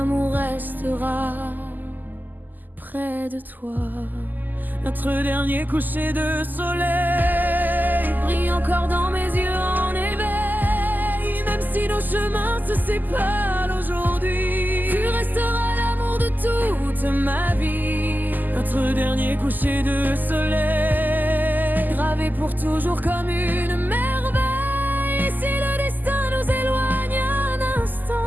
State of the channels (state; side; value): late; left; 0.086 ms